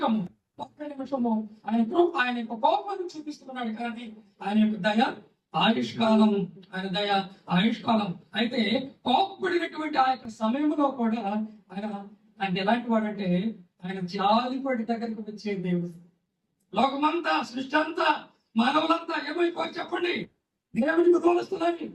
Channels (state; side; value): identical; both; correlation 1.00